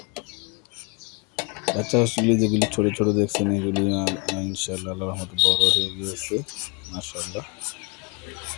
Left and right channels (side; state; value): right; quieter; 32.6 dB